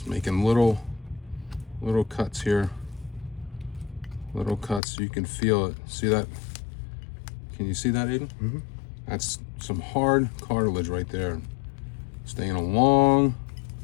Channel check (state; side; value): drops out; right; at 4.8 s